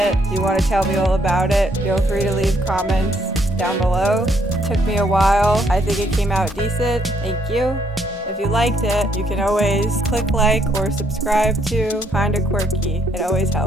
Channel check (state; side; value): normal; both; correlation 0.70